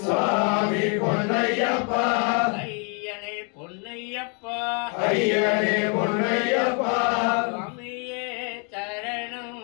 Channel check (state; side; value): quieter; right; 37.3 dB